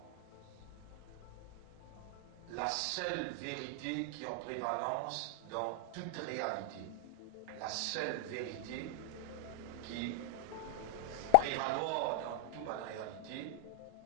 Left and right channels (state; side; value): different; both; correlation 0.00